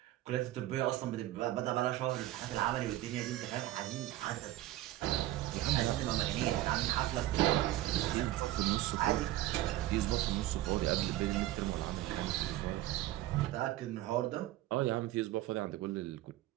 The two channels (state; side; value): quieter; left; 15.3 dB